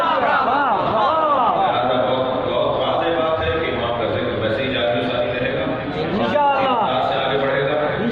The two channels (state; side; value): identical; both; correlation 1.00